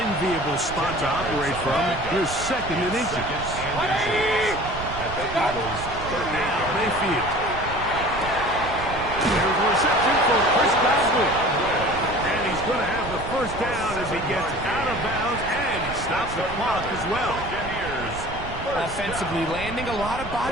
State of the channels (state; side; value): noise; right; rumble, 10 dB below the sound